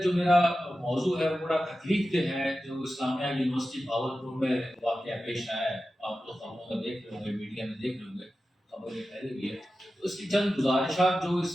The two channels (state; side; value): normal; both; correlation 0.93